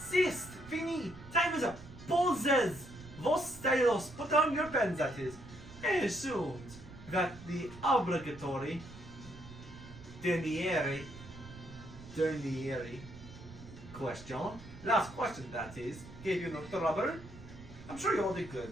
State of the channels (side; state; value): right; noise; rumble, 16 dB below the sound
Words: Sist. Fini. Time is up. Pauses. Vos stylos. Put down your pens, that is. And assumed that the obligatory derniere question, last question that is, gave you no trouble. I'm sure you all did